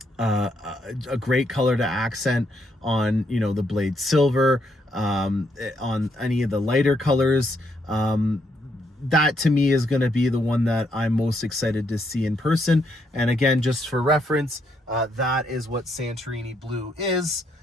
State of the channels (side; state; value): both; normal; correlation 0.75